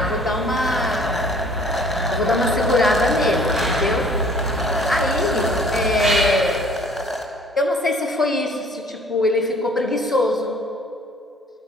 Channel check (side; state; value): both; normal; correlation 0.54